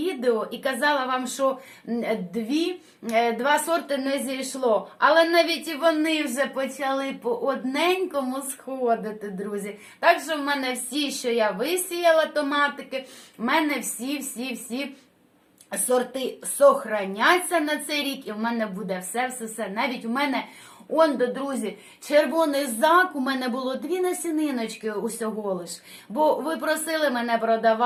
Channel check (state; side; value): identical; both; correlation 1.00